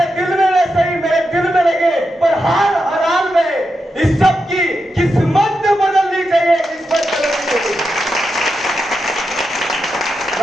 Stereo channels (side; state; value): both; normal; correlation 0.87